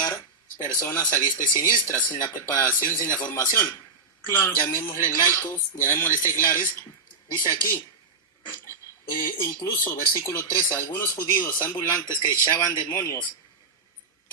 personas a diestra y siniestra, sin la preparación, sin la formación. Claro. Llamémosle laicos, llamémosle seglares. Dice aquí, incluso versículo 13, algunos judíos ambulantes que echaban demonios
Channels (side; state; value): left; quieter; 4.1 dB